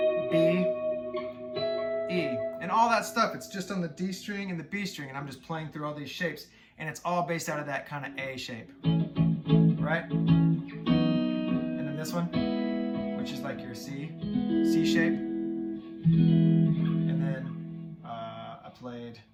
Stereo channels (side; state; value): both; identical; correlation 1.00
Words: B, E. And all that stuff, it's just on the D string and the B string, and I'm just playing through all these shapes, and it's all based out of that kind of A shape, right? And then this one, which is like your C shape. And then I played